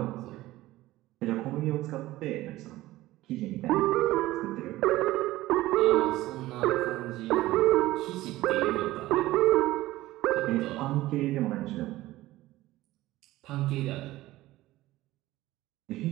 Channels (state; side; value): quieter; left; 16.9 dB